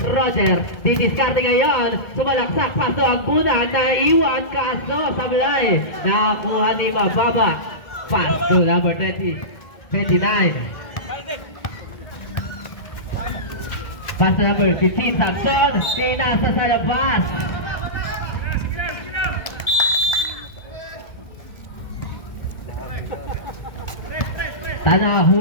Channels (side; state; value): right; late; 1.7 ms